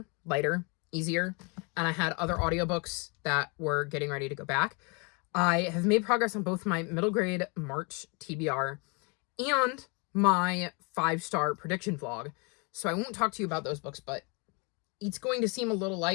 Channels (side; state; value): right; quieter; 31.9 dB